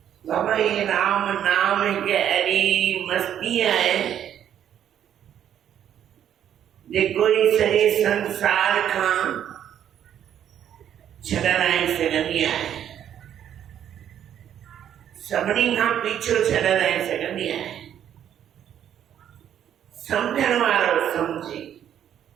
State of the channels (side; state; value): left; quieter; 9.9 dB